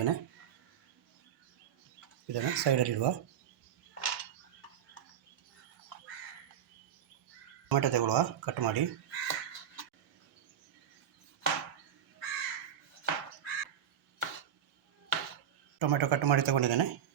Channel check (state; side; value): quieter; left; 9.2 dB